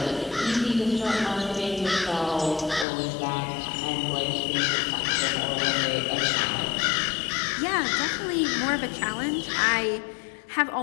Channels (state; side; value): drops out; right; at 2.9 s